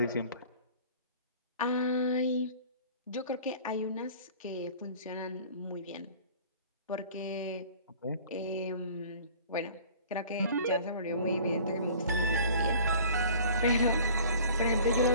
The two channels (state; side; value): inverted; both; correlation -0.47